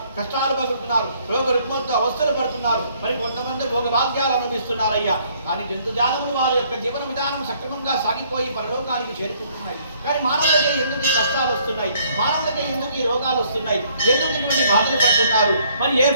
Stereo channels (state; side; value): inverted; both; correlation -0.64